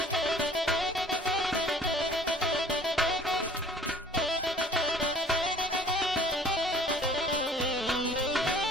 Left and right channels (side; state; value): both; normal; correlation 0.51